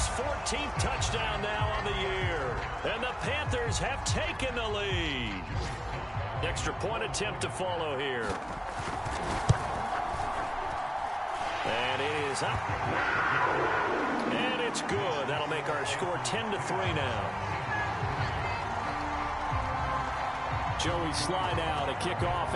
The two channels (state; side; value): identical; both; correlation 1.00